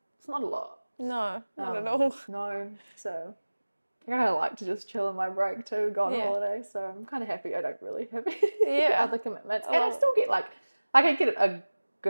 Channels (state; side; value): inverted; both; correlation -1.00